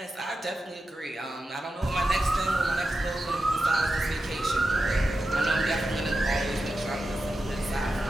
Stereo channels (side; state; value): both; normal; correlation 0.90